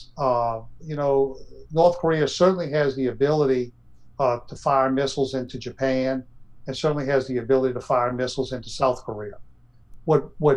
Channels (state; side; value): identical; both; correlation 1.00